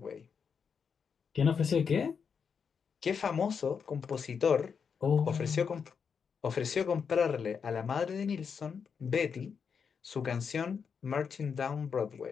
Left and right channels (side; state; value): right; quieter; 6.3 dB